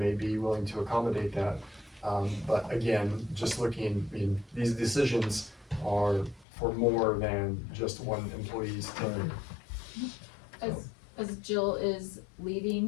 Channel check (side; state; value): right; drops out; at 6.5 s